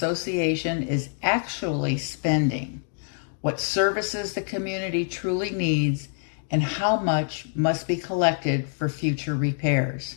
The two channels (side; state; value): right; silent; digital silence